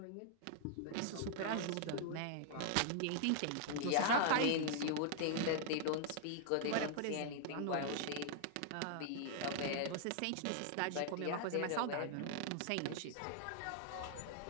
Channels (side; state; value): both; different; correlation -0.01